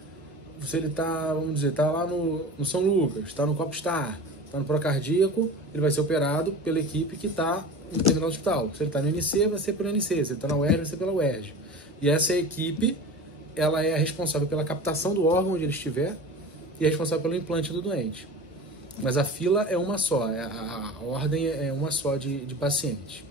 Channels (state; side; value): normal; both; correlation 0.34